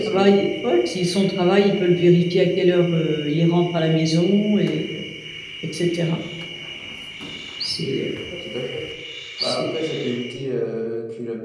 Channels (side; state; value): both; identical; correlation 1.00